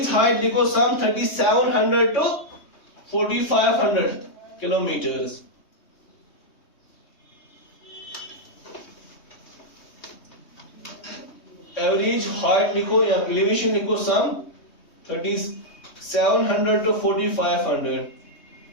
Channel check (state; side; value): late; right; 3.2 ms